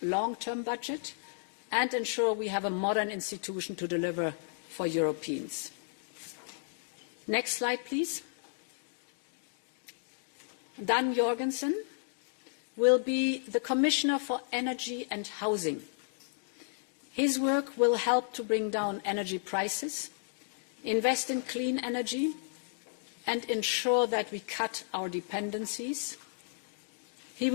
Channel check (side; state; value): right; silent; digital silence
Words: long-term budget and ensure we have a modern institution to deliver for Europeans. Next slide, please. Dan Jorgensen will be the Commissioner for Energy and Housing. His work will help to bring down energy prices, invest in clean energy, and ensure that we cut our dependencies. He